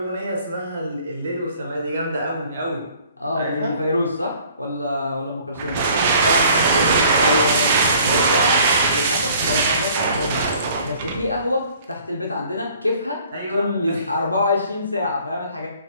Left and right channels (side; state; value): both; inverted; correlation -0.55